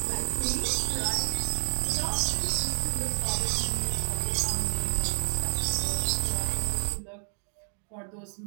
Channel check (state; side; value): silent; left; 56 dB below the other